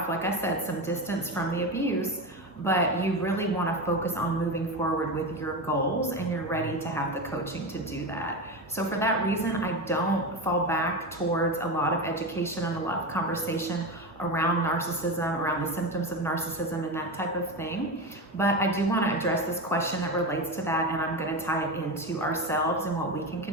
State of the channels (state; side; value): normal; both; correlation 0.20